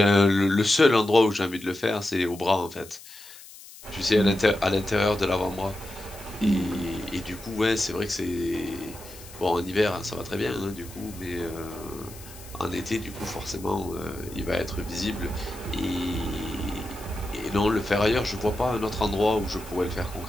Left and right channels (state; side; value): noise; left; hiss, 18 dB below the sound